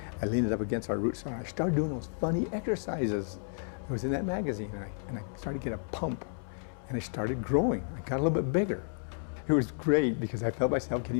I leaned it up against our root saw and I started doing those funny exercises that was in that magazine and I started to get a pump and I started growing. I got a little bit bigger. It was great because I felt myself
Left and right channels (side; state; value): right; silent; 57 dB below the other